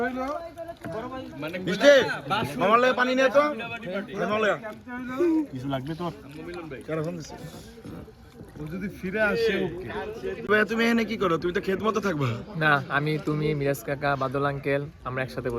হইলো মিষ্টি মামার লাগে পানি নিয়ে তো। কিছু লাগবে তোর? কেন ফোন দিচ্ছে? ও যদি ফিরে আসে ওকে। তুমি এখানে কি করো? তুমি তো খেত মতো থাকবা। না, আমি, তুমি, মিরাজ কাকা, বাদল আঙ্কেল আমরা একসাথে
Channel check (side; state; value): both; identical; correlation 1.00